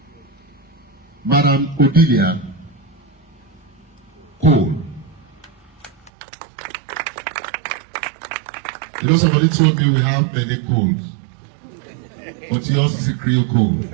Madam Odilia Cole. You know, somebody told me we have many Coles, but yours is a Creole Cole.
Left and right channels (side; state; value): left; drops out; at 6.1 s